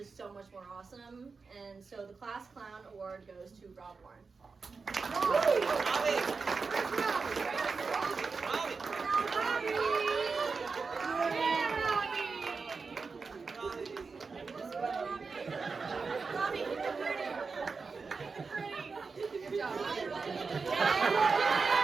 so much more awesome. And so the Class Clown Award goes to Rob Warren. Good job.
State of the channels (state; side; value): quieter; left; 4.7 dB